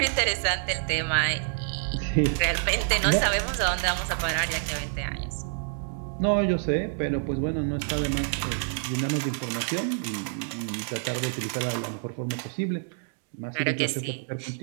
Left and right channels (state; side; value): silent; left; digital silence